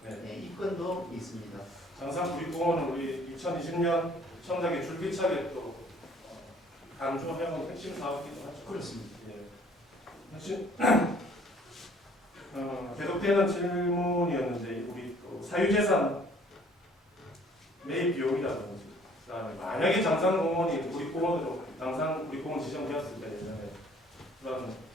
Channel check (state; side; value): normal; both; correlation 0.57